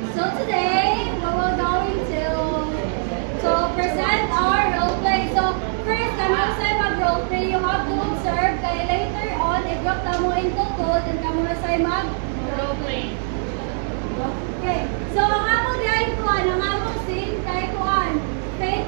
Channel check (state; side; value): silent; left; 56 dB below the other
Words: So today, we will going to present our role play. So first, kami sa mag-role play, you have to observe. Kaya later on, i-drop na mo into code and kami na sa mag-role play. Okay. So ang among diay kuan, ang among scene kay kuan,